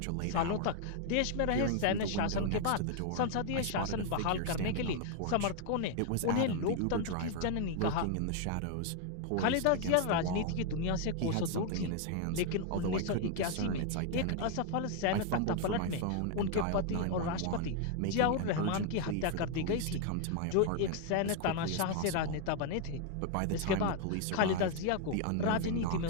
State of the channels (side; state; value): both; different; correlation 0.00